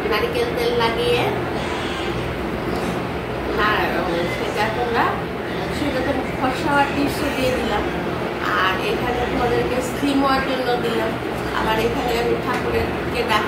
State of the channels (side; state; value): both; identical; correlation 1.00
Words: নারকেল তেল লাগিয়ে সেটা তোমরা সেটা তো ফর্সা হওয়ার টিপসও দিয়ে দিলাম, আর এখানে তোমাদেরকে স্টিম হওয়ার জন্য দিলাম। আবার এখানে আমি ঠাকুরকে